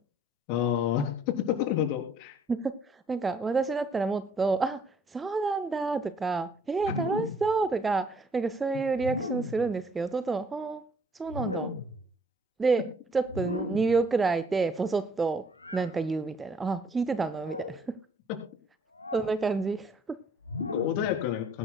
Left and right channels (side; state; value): both; normal; correlation 0.61